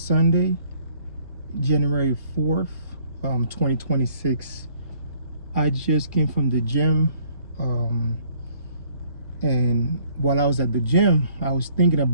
January 4th, 2026. I just came from the gym. Um, and while I was at the gym, I was thinking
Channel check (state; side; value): inverted; both; correlation -0.60